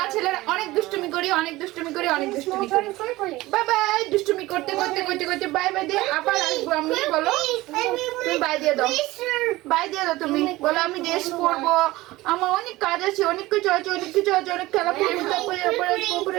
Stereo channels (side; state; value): left; quieter; 18.8 dB